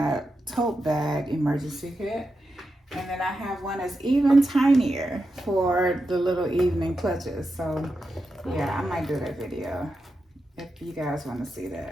tote bag emergency kit. And then I have one that's even tinier for the little evening clutches. So yeah, I might do that video if you guys want to see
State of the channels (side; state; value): both; normal; correlation 0.88